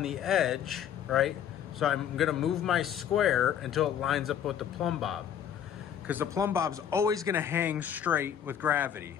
the edge, right? So I'm gonna move my square until it lines up with the plumb bob, because the plumb bob's always gonna hang straight with gravity.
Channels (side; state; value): right; quieter; 9.2 dB